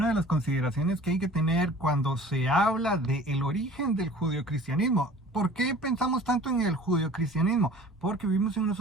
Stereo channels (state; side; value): normal; both; correlation 0.46